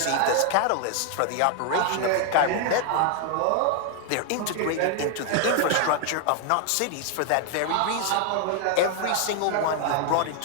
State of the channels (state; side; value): different; both; correlation 0.00